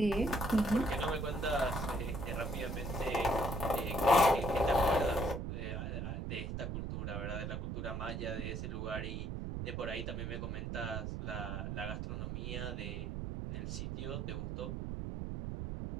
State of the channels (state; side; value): noise; right; rumble, 3 dB below the sound